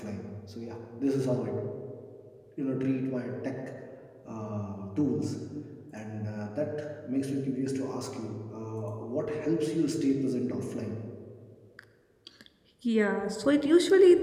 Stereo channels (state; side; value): identical; both; correlation 1.00